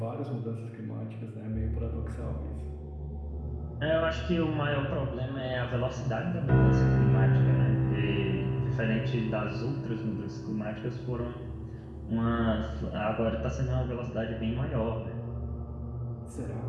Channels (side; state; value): both; identical; correlation 1.00